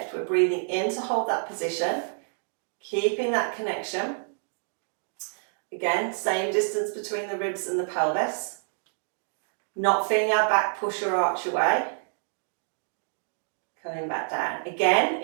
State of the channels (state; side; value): silent; left; digital silence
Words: we're breathing in to hold that position, keeping that connection. Again, same distance between the ribs and the pelvis. Not feeling our back push or arch away. Coming back down. Again,